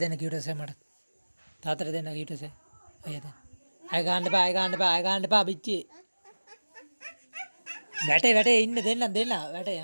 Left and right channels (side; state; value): both; inverted; correlation -1.00